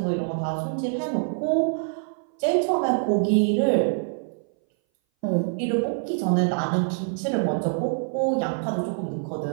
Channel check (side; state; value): left; silent; 59 dB below the other